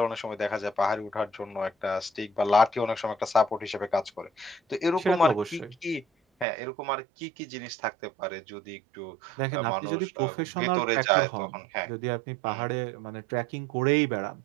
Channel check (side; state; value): left; drops out; at 6.5 s